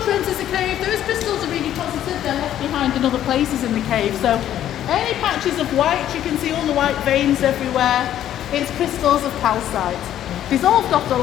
enters the cave, those crystals are really positive, they're left behind in other places in the cave. So any patches of white, you can see all the white veins everywhere, it's crystals of calcite. Dissolved off the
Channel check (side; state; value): right; quieter; 11.5 dB